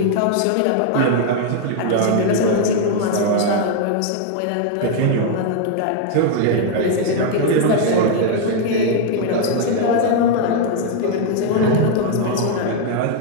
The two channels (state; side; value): different; both; correlation 0.00